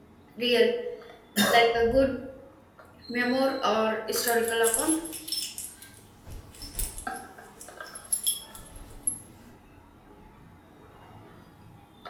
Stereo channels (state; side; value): identical; both; correlation 1.00